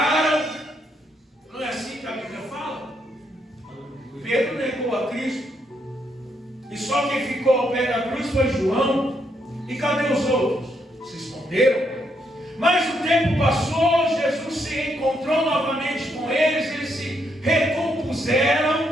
Não é assim que a Bíblia fala? Pedro negou a Cristo. E só quem ficou ao pé da cruz foi João. E cadê os outros? Se esconderam. Mas o tempo passou, Jesus se encontrou novamente com eles, eles se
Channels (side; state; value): both; normal; correlation 0.76